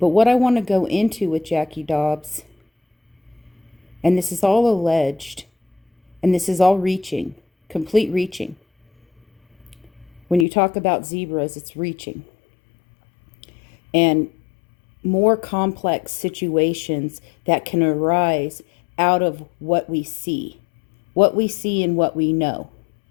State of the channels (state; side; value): drops out; right; at 10.5 s